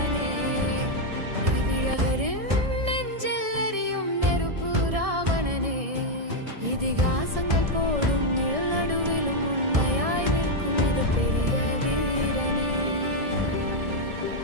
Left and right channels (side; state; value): left; late; 1.7 ms